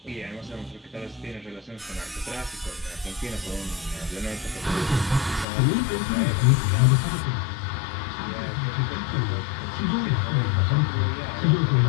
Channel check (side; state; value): right; drops out; at 5.5 s